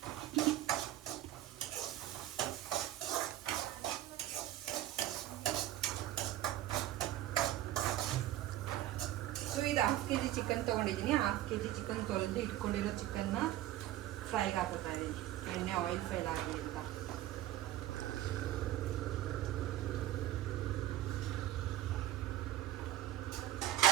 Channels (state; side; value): quieter; left; 14.0 dB